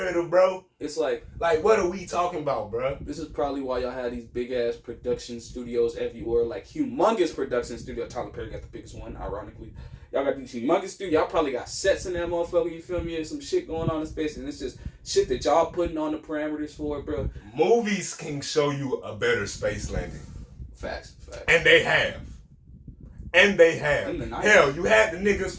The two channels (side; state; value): both; identical; correlation 1.00